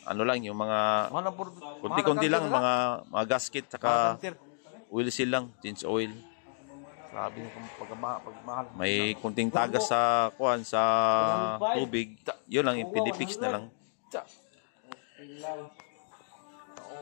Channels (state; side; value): silent; right; digital silence